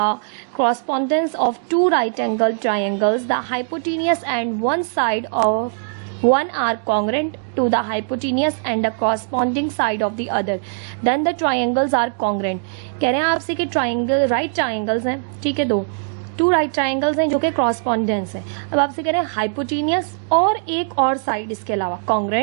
correspondence of two right angle triangles the hypotenuse and one side of one are congruent to the hypotenuse and the corresponding side of the other, then the triangles are congruent। कह रहे हैं आपसे कि triangle right triangles हैं, ठीक है, to right triangles हैं जो कि कॉरस्पॉन्डेंस है। अब आपसे कह रहे हैं हाइपोटेनियस और एक और साइड इसके अलावा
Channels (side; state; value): left; silent; digital silence